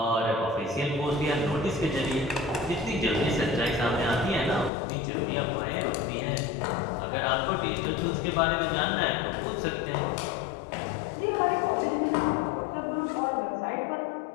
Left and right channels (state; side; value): drops out; right; at 4.7 s